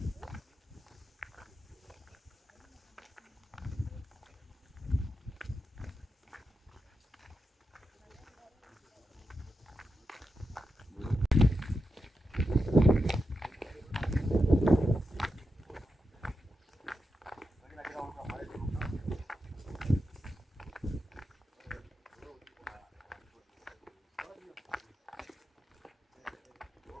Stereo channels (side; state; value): both; normal; correlation 0.88